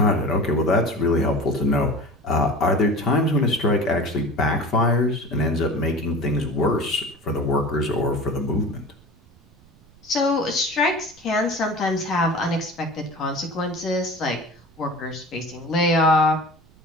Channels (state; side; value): noise; right; rumble, 27 dB below the sound